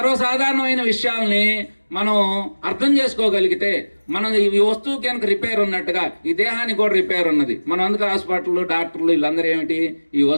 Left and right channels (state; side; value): inverted; both; correlation -1.00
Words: విషయాల్ని మనం అర్థం చేసుకోగలిగితే మనం ఈ వస్తువు కనుక రిపేర్ ఉన్నట్టుగా ఈ దేహానికి కూడా రిపేర్ ఉన్నది. మనం అందుకు హాస్పిటల్, డాక్టర్లు వీళ్ళందరూ ఏమిటి, ఈ